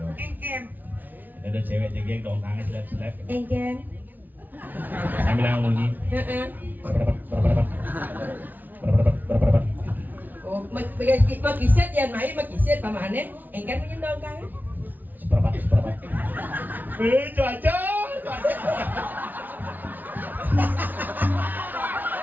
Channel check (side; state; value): left; late; 0.083 ms